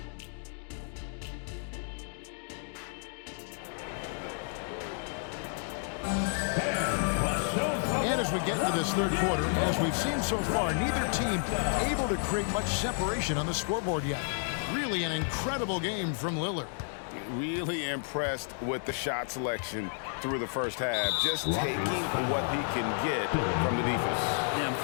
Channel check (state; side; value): silent; right; 57 dB below the other